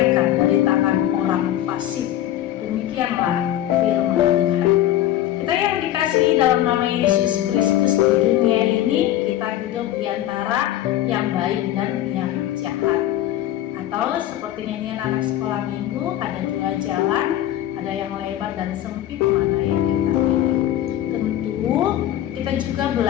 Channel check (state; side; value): quieter; right; 12.9 dB